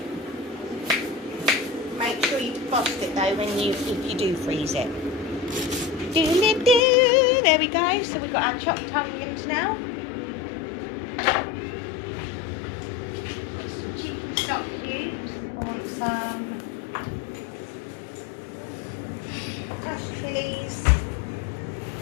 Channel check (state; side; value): drops out; right; at 6.9 s